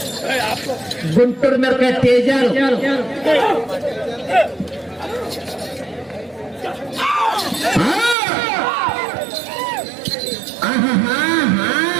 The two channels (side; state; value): left; drops out; at 8.2 s